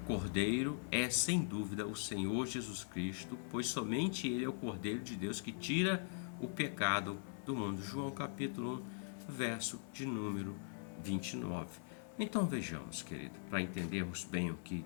é, sem dúvida, o Senhor Jesus Cristo, pois somente Ele é o Cordeiro de Deus que tira o pecado do mundo. João capítulo 1, verso de número 29. Então vejamos, querido, para entendermos bem o que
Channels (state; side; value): silent; right; 50 dB below the other